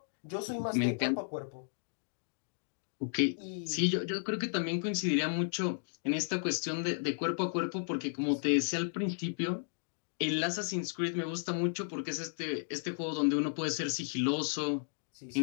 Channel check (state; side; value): silent; right; digital silence